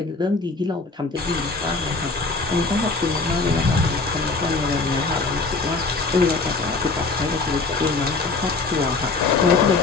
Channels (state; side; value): quieter; right; 3.9 dB